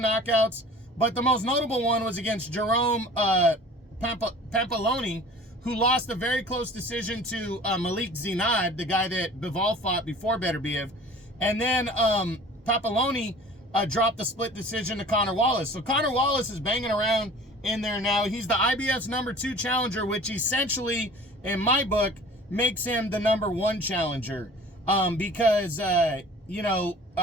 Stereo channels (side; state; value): both; normal; correlation 0.45